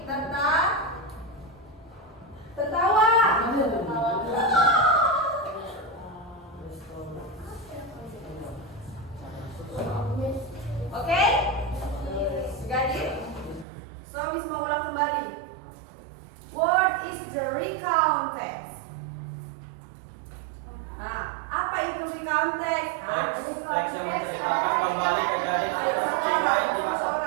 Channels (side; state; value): left; drops out; at 13.7 s